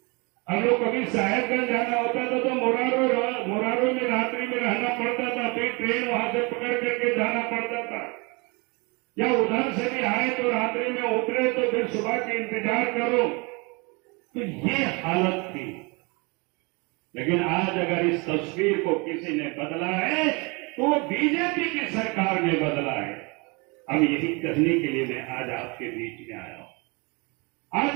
हम लोग कभी साहेबगंज जाना होता था तो मोरारो में रात्रि में रहना पड़ता था, फिर ट्रेन वहां से पकड़ करके जाना पड़ता था, या उधर से भी आए तो रात्रि में उतरे तो फिर सुबह के इंतजार करो। तो ये हालत थी। लेकिन आज अगर इस तस्वीर को किसी ने बदला है तो बीजेपी की सरकार ने बदला है। अब यही कहने के लिए मैं आज आपके बीच में आया हूं। आज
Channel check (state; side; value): quieter; left; 29.1 dB